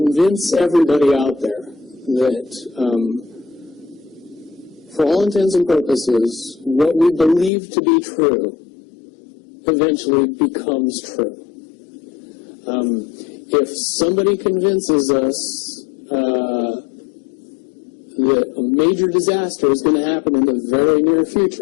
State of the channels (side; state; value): right; drops out; at 7.5 s